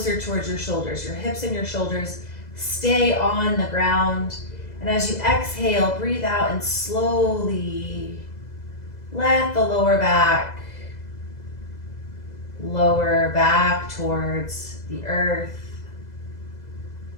towards your shoulders. Your hips and your shoulders stay on the ground. And as you exhale, breathe out and slowly let the lower back towards the earth.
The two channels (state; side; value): late; right; 2.0 ms